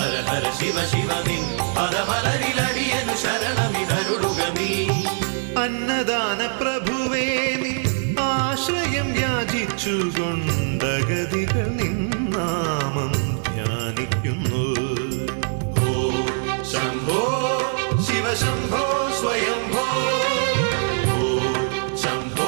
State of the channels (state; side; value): silent; left; digital silence